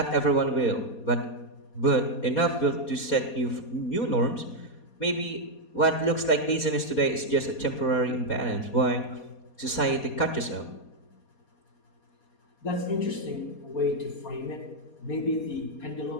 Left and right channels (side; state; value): right; late; 4.2 ms